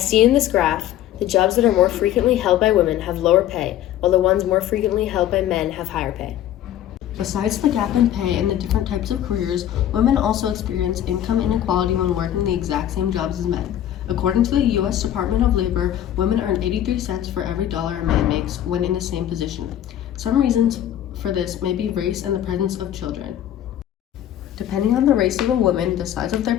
seen in this graph, the jobs that are more frequently held by women have lower pay, while the ones more frequently held by men have higher pay. Besides the gap in pay and the different types of careers, women also experience income inequality when working the exact same jobs as men. According to the U.S. Department of Labor, women earn 83 cents for every dollar a man makes when in the same position. Some reasons for this may be race and the presence of children. Depending on the race of a woman, the size of their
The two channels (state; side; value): quieter; right; 11.6 dB